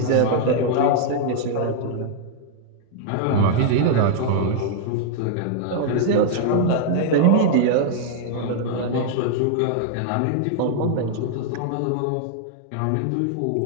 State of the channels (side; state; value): both; different; correlation -0.01